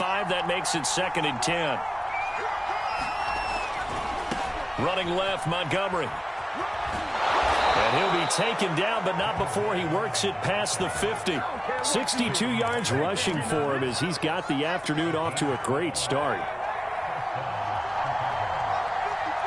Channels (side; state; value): both; identical; correlation 1.00